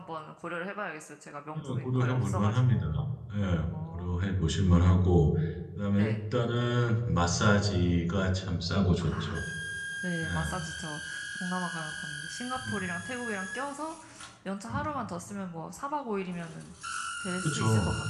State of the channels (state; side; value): identical; both; correlation 1.00